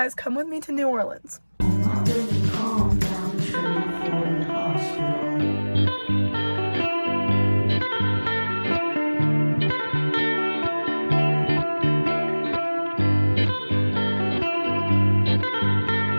come with me to New Orleans.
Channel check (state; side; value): inverted; both; correlation -1.00